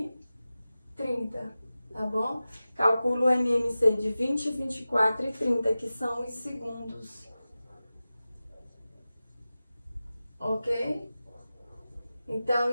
30, tá bom? Calculo o MMC de 20, 24 e 30, que são os segundos. Ok? Então,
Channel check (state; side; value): inverted; both; correlation -0.95